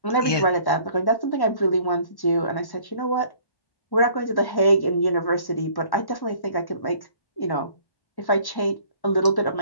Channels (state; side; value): late; right; 1.1 ms